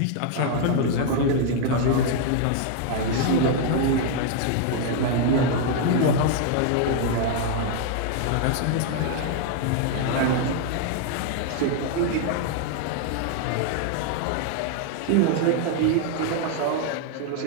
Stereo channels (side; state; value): both; different; correlation 0.00